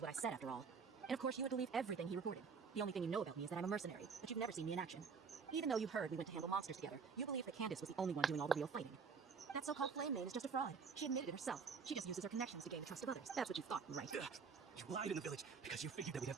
I said after all. And of course, you would believe everything he reported. The only thing you know about me is that I'm a mercenary, but you've never seen me in action. Even though you heard we went to handle monsters together, you believe that Candace was the only one doing all the real fighting. That so-called flame maid is just a fraud. She admitted it herself. She just uses her connections to gain the trust of others. That's what you thought, right? You lied in the village because you figured that we'd have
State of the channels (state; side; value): quieter; left; 5.5 dB